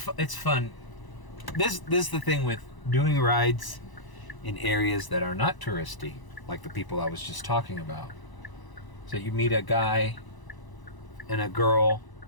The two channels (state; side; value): late; right; 1.0 ms